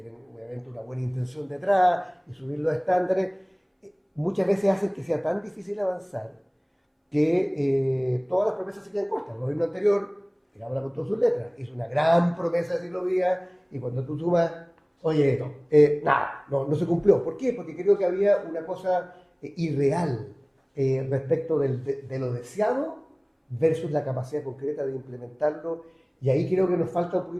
obviamente una buena intención detrás y subir los estándares, muchas veces hacen que sea tan difícil avanzar que todas las promesas se quedan cortas. El gobierno anterior, que habla con todas sus letras, hizo una gran promesa de ciclovía y cuando tú sumas, oye, nada, no se cumplió. ¿Por qué? Porque creo que había una cosa irreal respecto de lo deseado versus la capacidad concreta de implementarlo. Y ahí creo que nos falta un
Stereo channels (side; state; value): both; identical; correlation 1.00